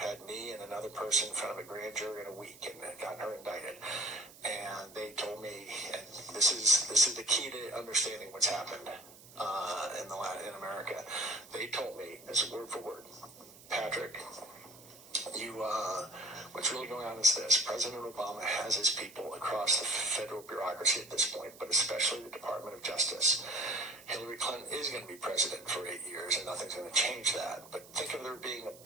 had me and another person in front of a grand jury in a week and gotten her indicted. And they told me, and this is the key to understanding what's happened in America. They told me, this is word for word, Patrick, what's really going on is this. President Obama has his people across the federal bureaucracy at this point, but especially the Department of Justice. Hillary Clinton is going to be president for 8 years, and nothing's going to change that. But think of there being a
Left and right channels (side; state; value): right; noise; hiss, 20 dB below the sound